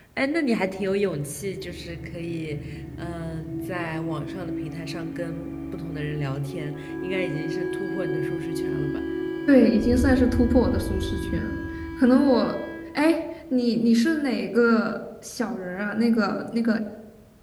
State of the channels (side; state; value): both; identical; correlation 1.00